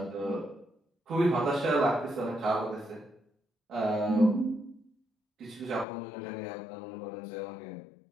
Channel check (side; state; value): right; drops out; at 5.9 s